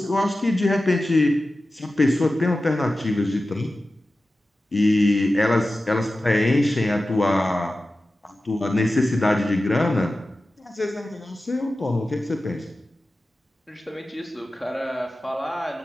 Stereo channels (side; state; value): both; normal; correlation 0.94